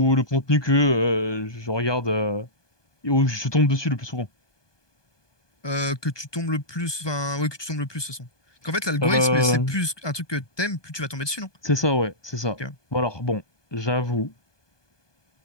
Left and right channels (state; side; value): late; right; 1.2 ms